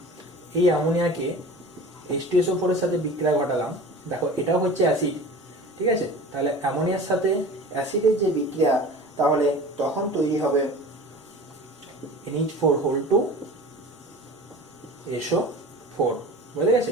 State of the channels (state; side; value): normal; both; correlation 0.38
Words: এই অ্যামোনিয়াকে H2SO4 এর সাথে বিক্রিয়া ঘটালাম, দেখো এটাও হচ্ছে অ্যাসিড, ঠিক আছে, তাহলে অ্যামোনিয়ার সাথে অ্যাসিডের যে বিক্রিয়া, তাহলে তখন তৈরি হবে NH4 SO4। বুঝে গেছে?